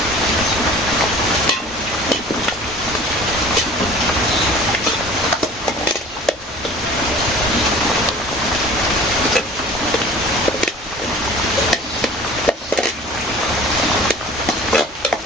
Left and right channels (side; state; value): both; normal; correlation 0.44